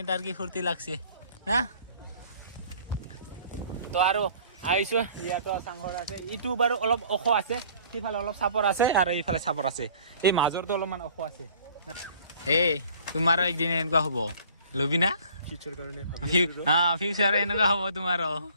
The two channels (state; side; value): inverted; both; correlation -0.53